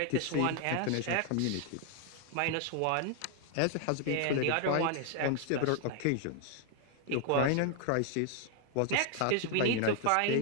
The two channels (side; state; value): both; different; correlation 0.00